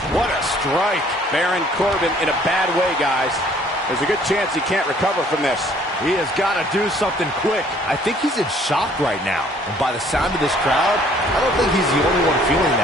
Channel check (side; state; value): both; normal; correlation 0.59